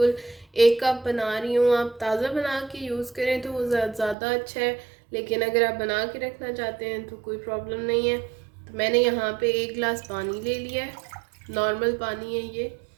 1 कप बना रही हूँ। आप ताज़ा बना के यूज़ करें तो वो ज़्यादा अच्छा है, लेकिन अगर आप बना के रखना चाहते हैं तो कोई प्रॉब्लम नहीं है। तो मैंने यहाँ पे 1 गिलास पानी ले लिया है, नॉर्मल पानी है ये।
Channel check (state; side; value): drops out; left; at 4.2 s